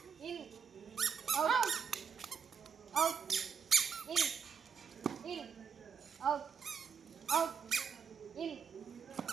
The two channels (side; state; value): left; quieter; 6.4 dB